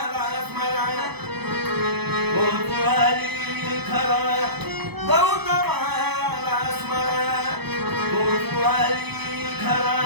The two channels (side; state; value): left; late; 0.98 ms